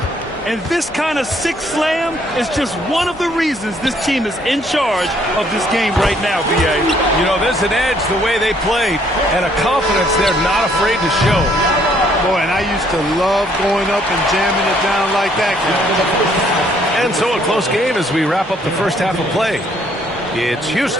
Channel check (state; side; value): normal; both; correlation 0.65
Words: And this kind of sick slam is just one of the reasons this team is in charge of this game right now, B.A. You know, there's an edge the way they played and a confidence they're not afraid to show. Boy, and I used to love going up and jamming it down like that. And so a close game as we wrap up the first half of play. It's